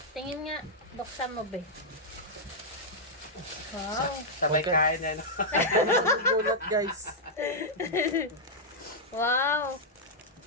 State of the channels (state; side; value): normal; both; correlation -0.06